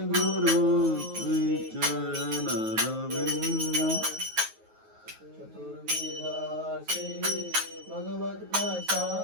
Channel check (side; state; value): left; late; 9.3 ms